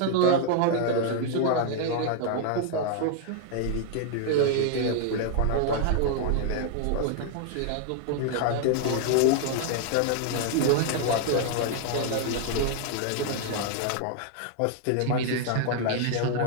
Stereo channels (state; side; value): different; both; correlation 0.00